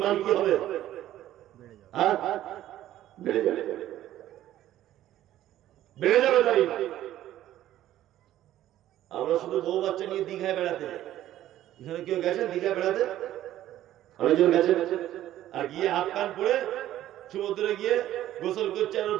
কি হবে? হ্যাঁ, বেড়ে যাবে, বেড়ে যাবে তার ঈমান। আমরা শুধু বউ বাচ্চা নিয়ে দীঘায় বেড়াতে যাই। এখানে কেউ গেছেন দীঘায় বেড়াতে? অনেকজন গেছে। আর গিয়ে হাত কান পরে সমুদ্রে গিয়ে গোসল করছে, আর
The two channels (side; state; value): left; quieter; 13.2 dB